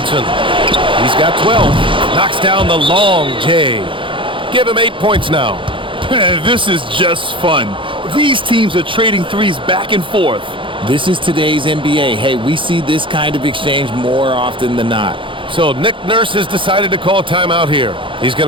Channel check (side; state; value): left; late; 0.25 ms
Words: He's got 12. Knocks down the long J. Give him 8 points now. This is just fun. These teams are trading threes back and forth. This is today's NBA. Hey, we see this kind of exchange more often than not. So Nick Nurse has decided to call timeout here. He's